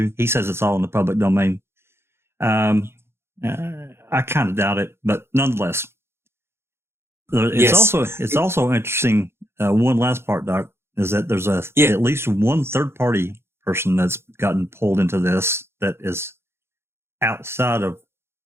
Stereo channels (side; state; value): left; late; 0.12 ms